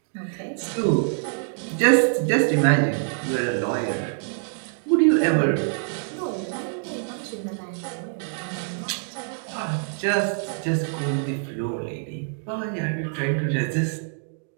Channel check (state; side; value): silent; left; 61 dB below the other